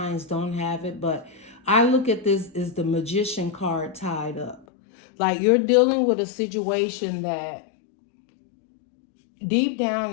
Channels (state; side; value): drops out; right; at 4.7 s